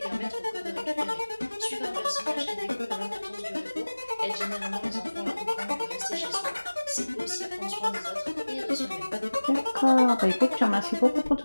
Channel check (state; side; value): inverted; both; correlation -1.00